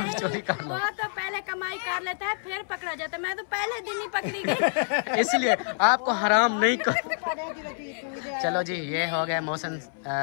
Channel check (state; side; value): silent; right; 60 dB below the other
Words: चोरी कर लो। वो तो पहले कमाई कर लेता है फिर पकड़ा जाता है, मैं तो पहले दिन ही पकड़ी गई। इसलिए आपको हराम नहीं कर। चलो जी, ये हो गए मोहसिन